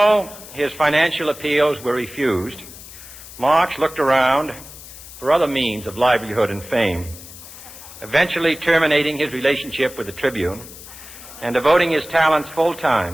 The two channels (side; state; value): left; noise; hiss, 16 dB below the sound